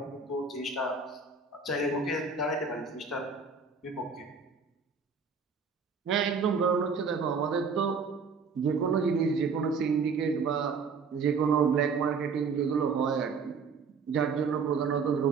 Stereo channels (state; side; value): quieter; left; 5.1 dB